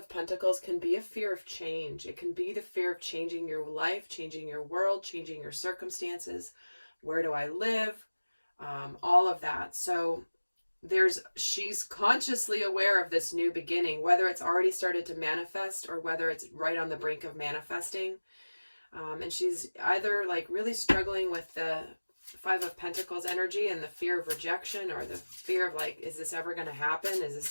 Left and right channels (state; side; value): inverted; both; correlation -1.00